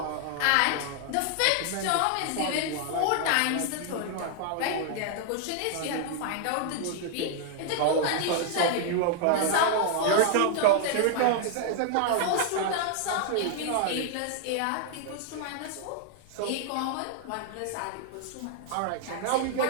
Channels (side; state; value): both; different; correlation 0.00